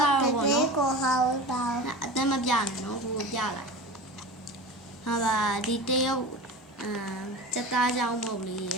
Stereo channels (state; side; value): normal; both; correlation 0.32